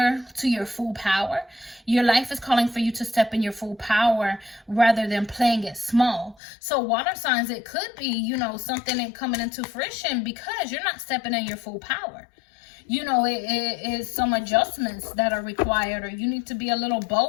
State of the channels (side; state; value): right; drops out; at 6.4 s